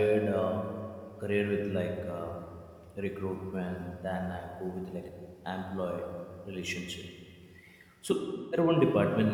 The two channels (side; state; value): both; identical; correlation 1.00